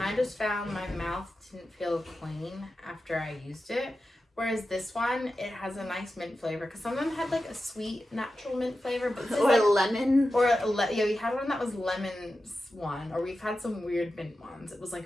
I just found my mouth didn't feel clean after I used it. Whereas this one, it has a nice mint flavor. Because some of them had like a sweet, natural mint flavor. But this or is like, lemon. Yeah, we had one that was lemons one. Or we've had some weird mint ones. It was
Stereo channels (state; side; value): normal; both; correlation 0.92